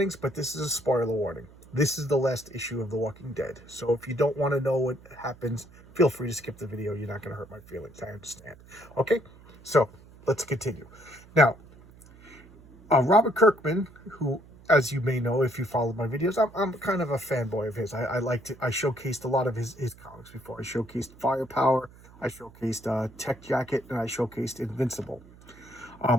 but this is a spoiler warning. This is the last issue of The Walking Dead. So if you don't want to know what happens, feel free to skip the video. You're not going to hurt my feelings. I understand. Okay? So, let's continue. Now, Robert Kirkman, who, as you may know if you followed my videos, I'm kind of a fanboy of his. I showcased a lot of his comics before. I showcased Firepower, I showcased Tech Jacket, and I showcased Invincible.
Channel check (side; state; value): right; noise; hum, 23 dB below the sound